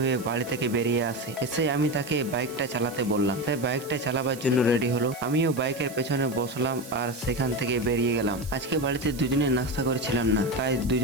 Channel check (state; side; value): noise; right; hiss, 17 dB below the sound